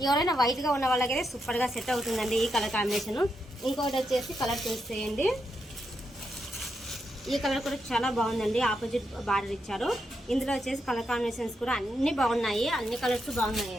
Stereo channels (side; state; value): both; normal; correlation 0.83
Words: ఎవరైనా వైట్గా ఉన్న వాళ్ళకైతే సూపర్గా సెట్ అవుతుందండి ఈ కలర్ కాంబినేషన్. ఇంకోటి వచ్చేసి కలర్ చూసేయండి. ఈ కలర్ కూడా చాలా బాగుందండి. ఆపోజిట్ బార్డర్ ఇచ్చారు. ఇందులో వచ్చేసి కలర్ కాంబినేషన్స్ కూడా అన్నీ బాగున్నాయి, అన్ని కలర్స్